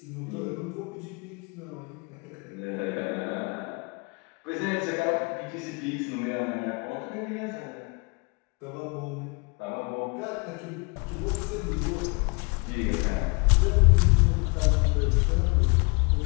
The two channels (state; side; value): quieter; right; 31.3 dB